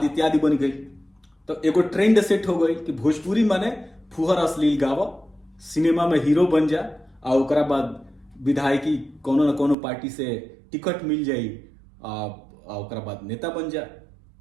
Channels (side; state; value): left; drops out; at 9.8 s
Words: इत्यादि बन गई। तो एगो ट्रेंड सेट हो गई कि भोजपुरी माने फुहर अश्लील गावा, सिनेमा में हीरो बन जा, आ ओकरा बाद विधायकी कोनो न कोनो पार्टी से टिकट मिल जाई, आ ओकरा बाद नेता बन जा,